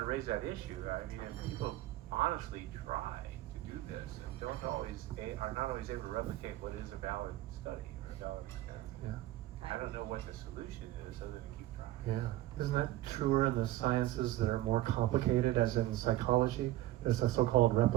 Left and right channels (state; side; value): quieter; left; 15.7 dB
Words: to raise that issue. I mean, if people honestly try to do this and are not always able to replicate what is a valid study or a valid experiment. I don't know what the solution is other than keep trying. Yeah. Isn't that truer in the sciences that are more complicated, as in psychology? There's a so-called